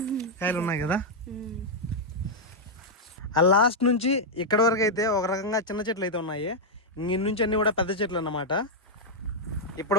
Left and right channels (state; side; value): normal; both; correlation -0.03